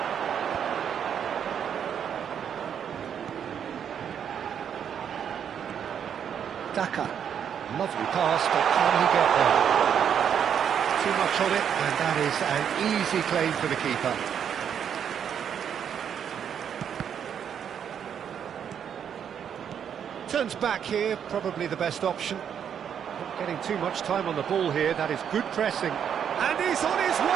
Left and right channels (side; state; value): left; quieter; 8.3 dB